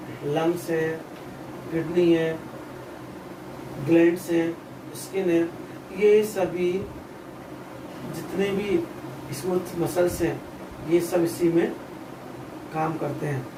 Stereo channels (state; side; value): identical; both; correlation 1.00